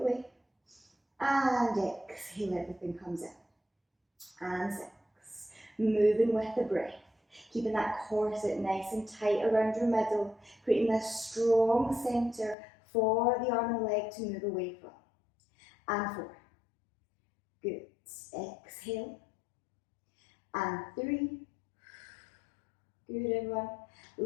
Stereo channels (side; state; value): right; drops out; at 12.6 s